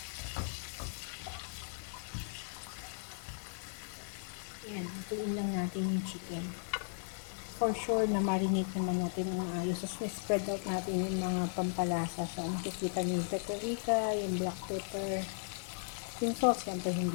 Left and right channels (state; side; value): silent; right; digital silence